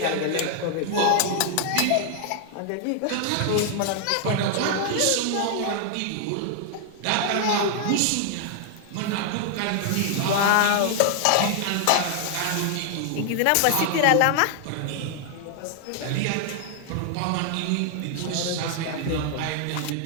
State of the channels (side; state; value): both; different; correlation 0.00